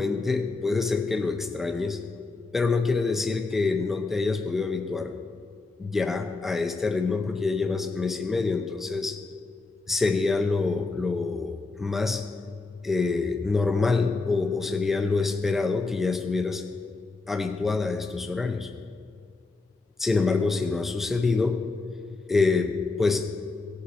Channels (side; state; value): right; quieter; 3.7 dB